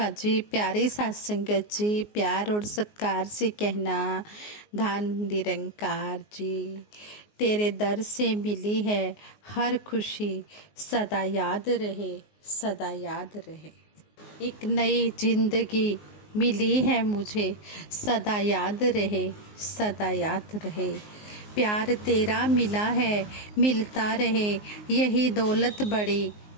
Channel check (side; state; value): right; late; 19 ms